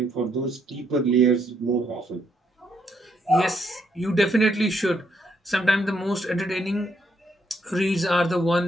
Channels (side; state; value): both; normal; correlation 0.74